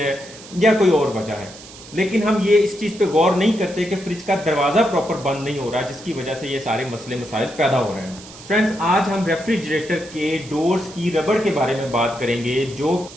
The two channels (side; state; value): right; noise; hiss, 17 dB below the sound